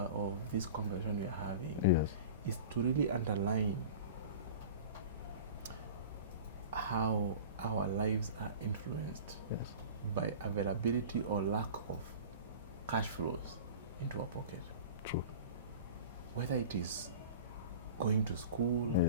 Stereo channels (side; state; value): both; inverted; correlation -0.37